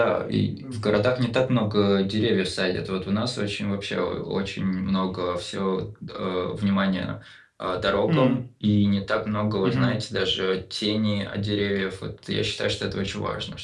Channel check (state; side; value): identical; both; correlation 1.00